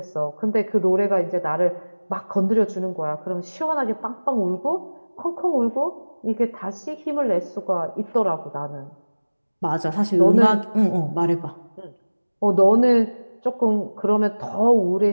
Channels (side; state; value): both; inverted; correlation -1.00